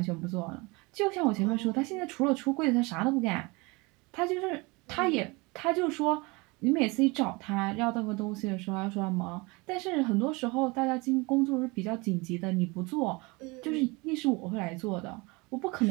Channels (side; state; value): left; quieter; 26.0 dB